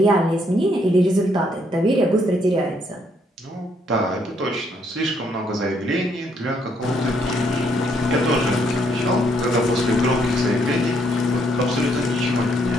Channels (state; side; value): normal; both; correlation 0.71